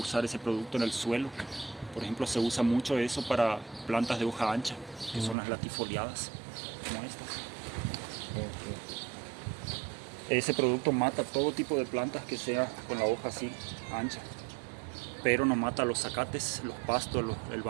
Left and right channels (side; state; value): left; drops out; at 5.4 s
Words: ese producto en el suelo, por ejemplo, se usa mucho eso para plantas de hoja ancha, que son las latifoliadas, como estas. Ese producto mata todo tipo de plantas que sea con la hoja así ancha, pero no mata los zacates, los pastos, el